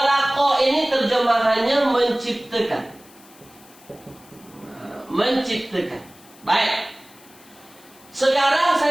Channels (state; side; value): noise; left; hiss, 25 dB below the sound